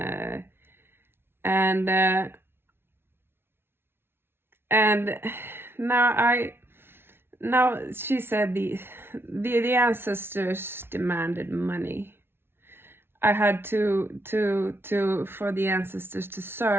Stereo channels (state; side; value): late; left; 0.11 ms